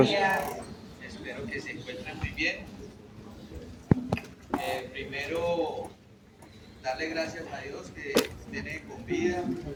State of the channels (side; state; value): both; identical; correlation 1.00